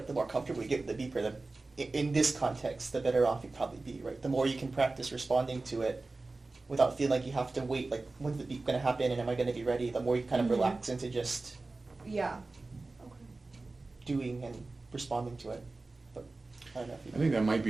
the more comfortable you get with the beeper, in this context, the better off you'd probably be, right? The more you can practice responding to it without feeling like you have to wait, like, when's the beep going to happen and am I going to be ready? The more you kind of Mhm. relax into just Yeah. Okay. doing and responding to it. But I don't know if you I think that might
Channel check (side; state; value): left; quieter; 3.4 dB